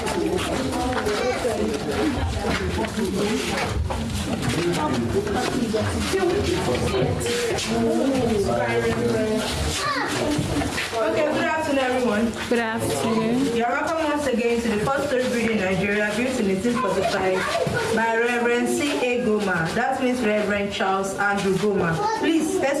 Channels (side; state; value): both; identical; correlation 1.00